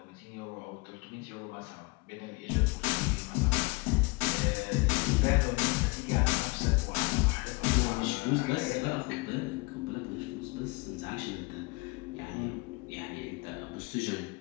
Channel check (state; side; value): quieter; right; 26.9 dB